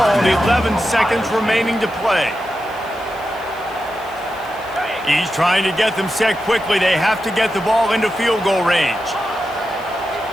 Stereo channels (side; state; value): left; noise; hiss, 25 dB below the sound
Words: 11 seconds remaining to play. He's trying to get them set quickly. They have to get the ball into field goal range.